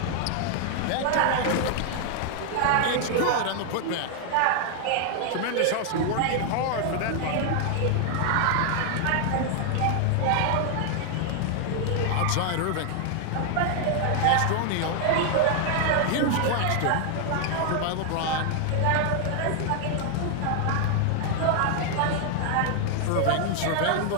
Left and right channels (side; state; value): both; different; correlation 0.00